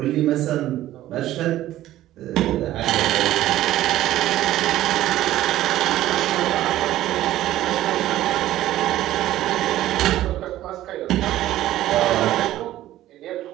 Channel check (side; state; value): left; quieter; 14.2 dB